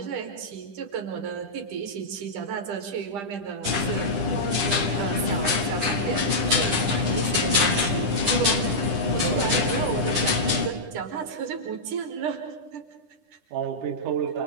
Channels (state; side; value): late; left; 10 ms